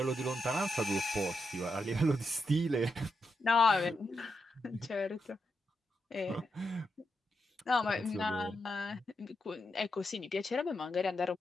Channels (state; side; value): normal; both; correlation 0.84